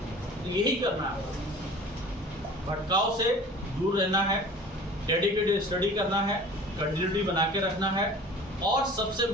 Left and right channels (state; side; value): normal; both; correlation 0.43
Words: तो यही करना है, भटकाव से दूर रहना है, डेडिकेटेड स्टडी करना है, कंटिन्यूटी बना के रखना है, और सबसे